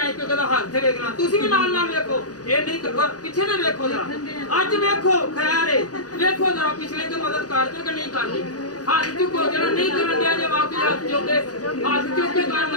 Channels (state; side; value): late; right; 0.68 ms